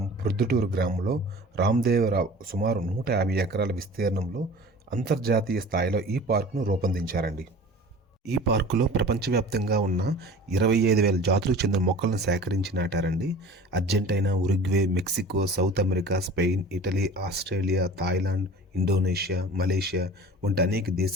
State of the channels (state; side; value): normal; both; correlation 0.42